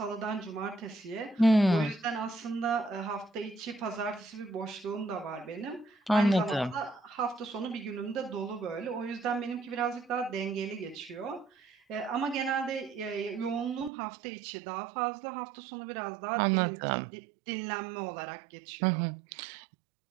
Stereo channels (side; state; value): left; drops out; at 13.9 s